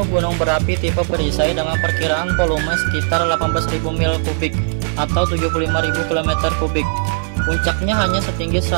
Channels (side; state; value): left; silent; digital silence